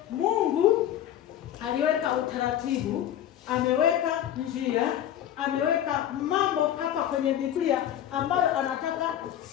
Mungu aliweka utaratibu, ameweka njia, ameweka mambo hapa kwenye Biblia ambayo anataka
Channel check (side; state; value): right; quieter; 11.1 dB